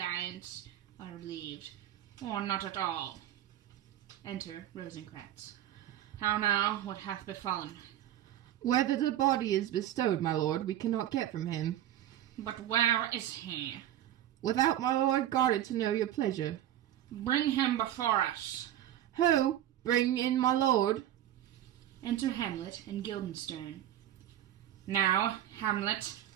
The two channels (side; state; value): left; quieter; 12.1 dB